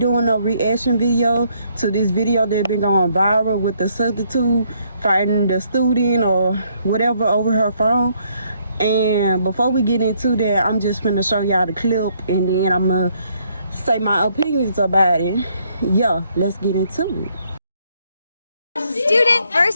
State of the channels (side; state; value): both; inverted; correlation -0.70